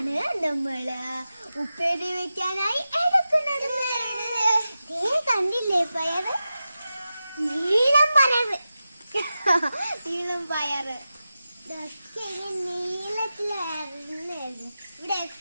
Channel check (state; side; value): inverted; both; correlation -0.92